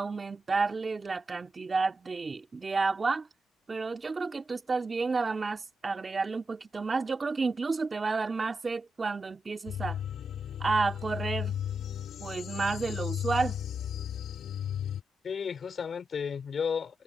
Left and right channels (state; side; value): normal; both; correlation 0.87